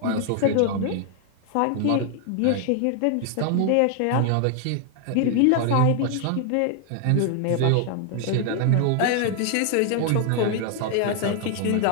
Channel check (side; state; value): both; different; correlation 0.00